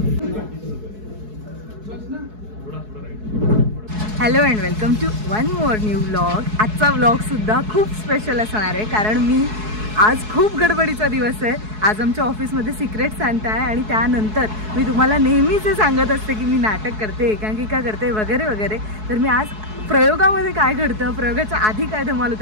Hello and welcome to one more new vlog. आजचा व्लॉग सुद्धा खूप स्पेशल असणार आहे, कारण मी आज खूप गडबडीचा दिवस आहे. आज आमच्या ऑफिसमध्ये सिक्रेट सांता आहे आणि त्यानंतर मी तुम्हाला नेहमीच सांगत असते की मी नाटक करते, एकांकिका करते वगैरे वगैरे. तर मी आज प्रयोगामध्ये काय घडतं, प्रयोगाच्या आधी काय धमाल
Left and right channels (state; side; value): late; left; 4.7 ms